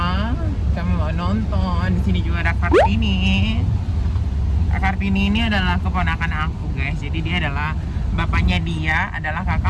Kami mau nonton. Di sini juga ada Kartini. Kartini ini adalah keponakan aku, guys. Jadi dia adalah bapaknya, dia adalah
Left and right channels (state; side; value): identical; both; correlation 1.00